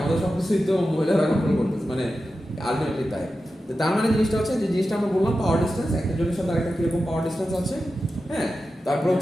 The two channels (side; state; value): both; normal; correlation 0.92